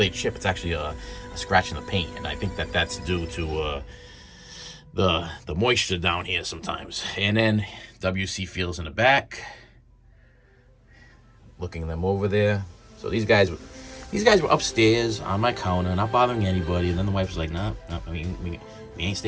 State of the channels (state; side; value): identical; both; correlation 1.00